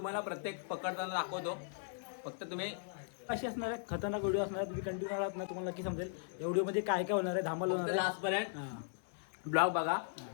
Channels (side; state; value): right; silent; digital silence